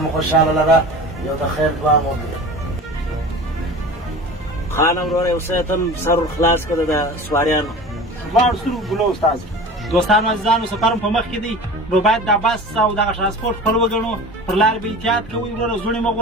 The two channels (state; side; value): normal; both; correlation 0.36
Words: خوشحاله لره. یو د خیر دعا مو وکړه. خانم وروره یو څه ته سر خلاص کړه د سواریانو. دواړو سترګو ګلو استاد. دوستانو عزیزانو سفر په مخ کې دی، نو باید دا بس او دغه ترانسپورټ خپل وګڼو. پر لار به احتیاط کوئ وروره، زوړې مه